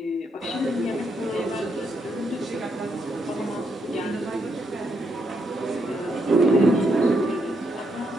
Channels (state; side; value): normal; both; correlation 0.78